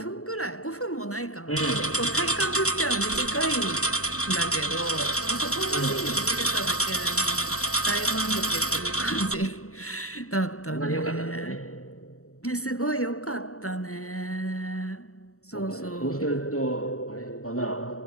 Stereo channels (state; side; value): late; right; 0.65 ms